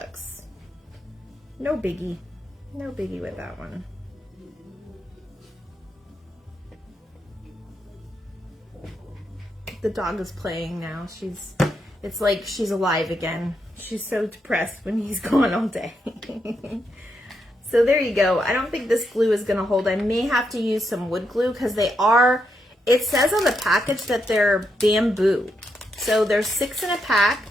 No biggie with that one. The dog is playing now. It's like she's alive again. She's so depressed when he's gone all day. So there you go. I don't think this glue is gonna hold. I may have to use some wood glue, because it says on the package that they're bamboo. So there's 6 in a pack.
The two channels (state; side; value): normal; both; correlation 0.81